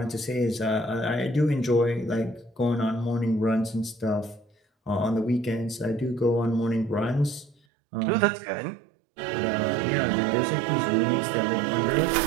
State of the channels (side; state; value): left; drops out; at 7.6 s